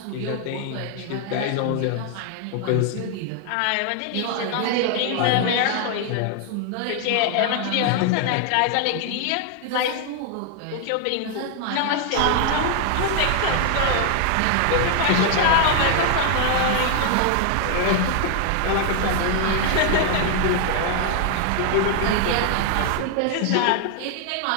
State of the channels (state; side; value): different; both; correlation 0.00